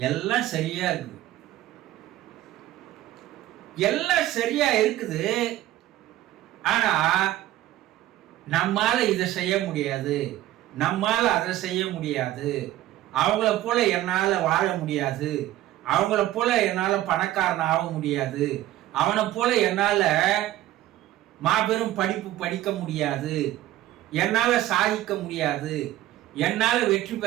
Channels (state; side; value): quieter; left; 14.5 dB